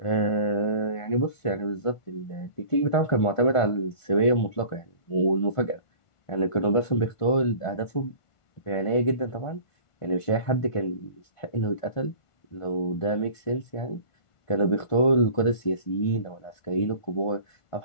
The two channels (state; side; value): late; right; 1.5 ms